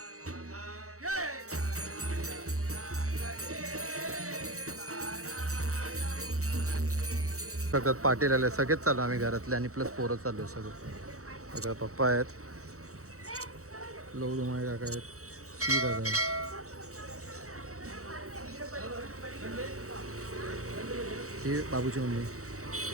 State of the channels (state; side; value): late; left; 0.65 ms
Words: सगळ्यात पाटील आले, सगळेच चालू आम्ही घरातले आणि प्लस पोरं चालू आहे सगळं. सगळं पप्पा आहेत, लवडुमाळे काका आहेत, शी दादा आहेत. ही बाबूची मम्मी.